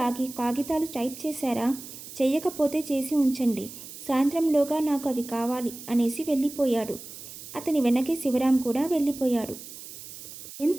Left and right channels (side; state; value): right; noise; hiss, 14 dB below the sound